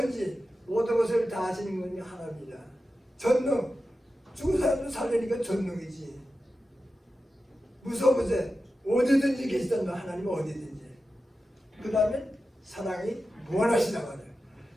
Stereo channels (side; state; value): both; normal; correlation 0.92